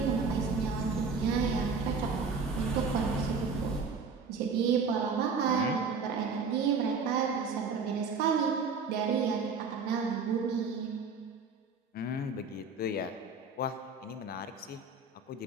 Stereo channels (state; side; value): quieter; left; 4.7 dB